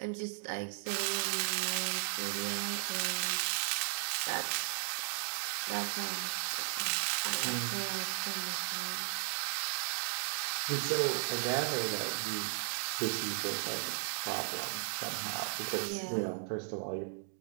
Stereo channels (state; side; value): silent; left; digital silence